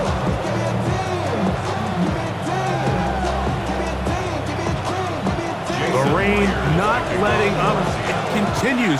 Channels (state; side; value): identical; both; correlation 1.00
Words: The rain not letting up. It